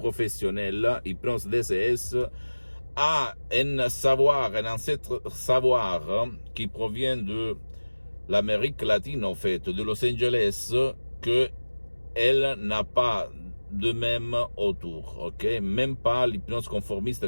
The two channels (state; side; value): inverted; both; correlation -1.00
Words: hypnose DCS, a un savoir, un ancêtre savoir qui provient de l'Amérique latine, en fait, de Los Angeles, que elle n'a pas de même autour, ok? Même pas l'hypnose